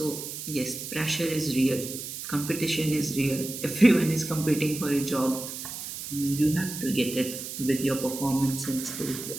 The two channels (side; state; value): right; noise; hiss, 8 dB below the sound